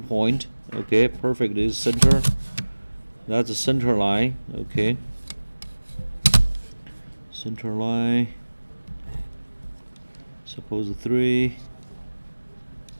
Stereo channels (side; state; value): both; inverted; correlation -1.00